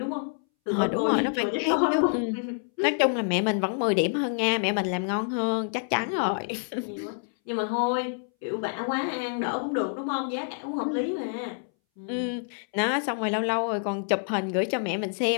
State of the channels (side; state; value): right; silent; 60 dB below the other